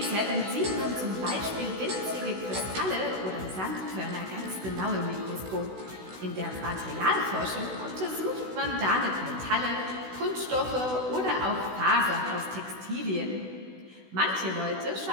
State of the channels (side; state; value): left; late; 16 ms